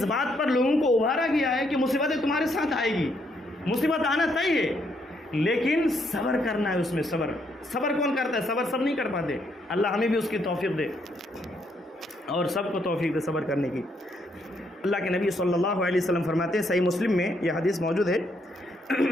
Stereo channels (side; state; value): both; normal; correlation 0.74